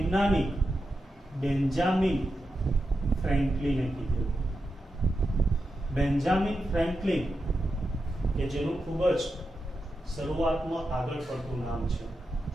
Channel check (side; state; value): both; normal; correlation 0.89